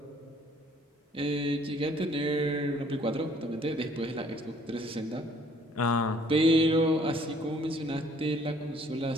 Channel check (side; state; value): both; normal; correlation 0.60